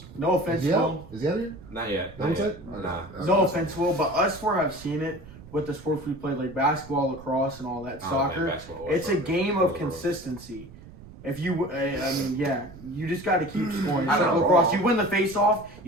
No offense, Is he Will. out? Is he out of here? Not yet. That was Not it? yet. Nah. No offense, Will, but us four have seen it with the sports we play, like basketball, lacrosse, and all that. I don't Soccer. play basketball or It's a soccer. game of consistency. If you, you just got to keep scoring. It's I like know. lacrosse. You win the face-off,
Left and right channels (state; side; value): noise; right; rumble, 18 dB below the sound